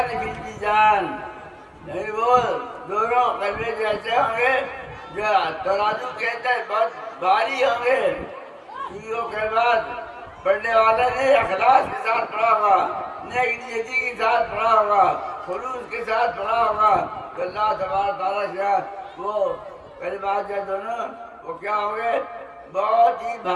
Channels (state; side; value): identical; both; correlation 1.00